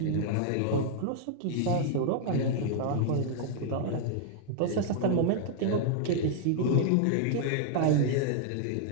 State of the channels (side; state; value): both; different; correlation -0.01